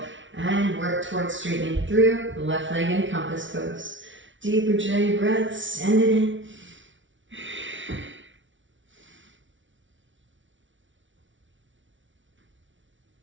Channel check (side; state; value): left; late; 0.56 ms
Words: and work towards straightening through the left leg in compass pose. Deep Ujjayi breath, send it in.